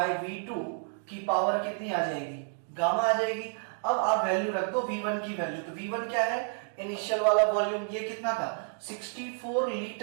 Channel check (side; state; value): left; silent; 58 dB below the other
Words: V2 की पावर कितनी आ जाएगी? गामा आ जाएगी। अब आप वैल्यू रख दो V1 की वैल्यू। तो V1 क्या है? इनिशियल वाला वॉल्यूम, ये कितना था? 64